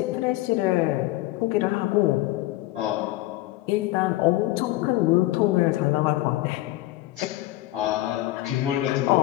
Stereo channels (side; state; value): right; quieter; 17.1 dB